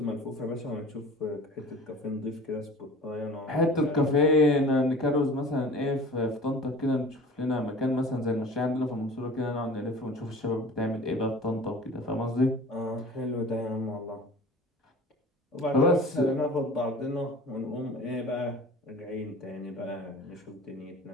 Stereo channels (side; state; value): both; normal; correlation 0.42